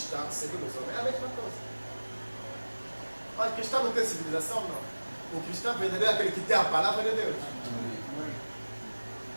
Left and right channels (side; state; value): both; inverted; correlation -1.00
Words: segundo os homens, é a mesma coisa. Mas o cristão não tem civilização, não. O cristão verdadeiro é aquele que tem a palavra de Deus.